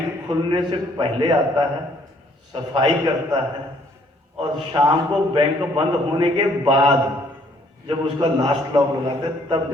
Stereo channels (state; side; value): normal; both; correlation 0.64